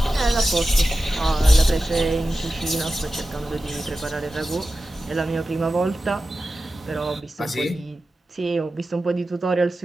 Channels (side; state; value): both; normal; correlation 0.94